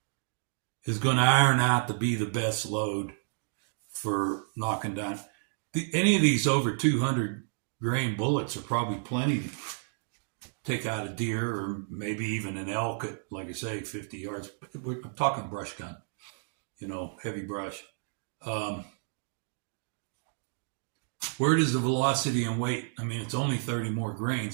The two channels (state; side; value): silent; left; digital silence